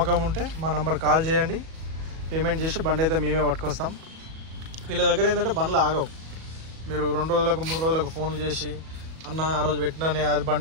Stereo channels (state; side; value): late; left; 37 ms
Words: ఉంటే మా నంబర్ కాల్ చేయండి. పేమెంట్ చేసి బండి అయితే మేమే పట్టుకొస్తాం. వీళ్ళ దగ్గర ఏంటంటే బండ్లు ఆగవు. మీరు 2 రోజులకు 3 రోజులకు ఫోన్లు చేసి అన్న ఆ రోజు పెట్టినానే అది